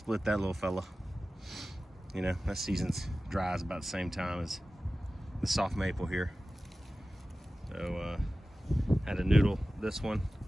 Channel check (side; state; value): both; normal; correlation 0.96